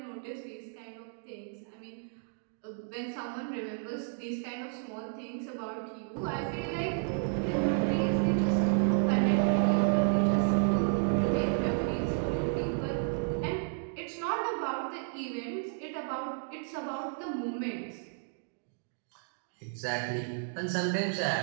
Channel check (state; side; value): silent; left; digital silence